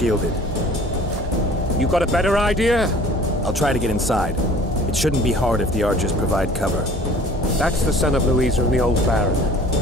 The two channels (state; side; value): normal; both; correlation 0.49